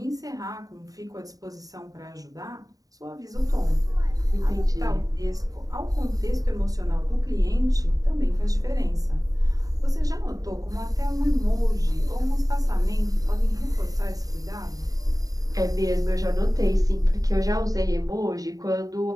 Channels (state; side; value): late; left; 0.18 ms